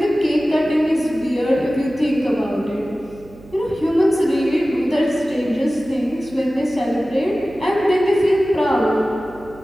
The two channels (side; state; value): right; noise; hum, 22 dB below the sound